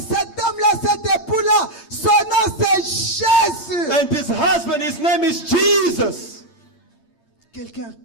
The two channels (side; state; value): right; late; 8.7 ms